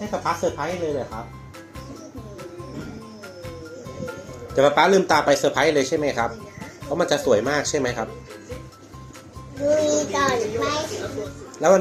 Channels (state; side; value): identical; both; correlation 1.00